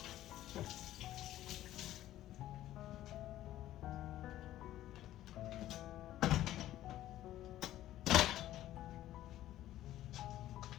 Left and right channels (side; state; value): right; quieter; 13.7 dB